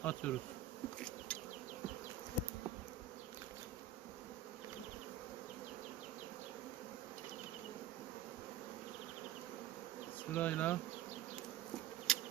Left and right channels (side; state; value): left; quieter; 10.0 dB